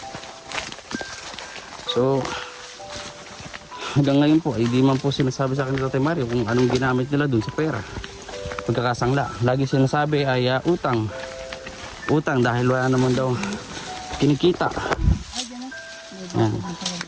So, hanggang ngayon po, ay di man po sinasabi sa akin ni Tatay Mario kung anong ginamit nila dun sa pera. Pagkakasangla. Lagi sinasabi ay utang. Utang dahil wala naman daw kinikita. Yan.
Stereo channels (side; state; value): both; identical; correlation 1.00